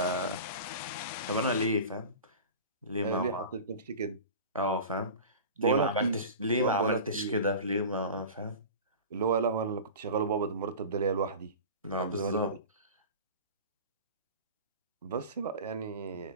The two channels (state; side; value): inverted; both; correlation -0.35